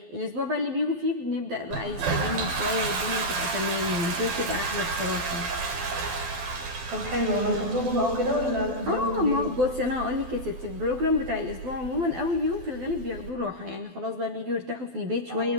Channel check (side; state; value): left; late; 12 ms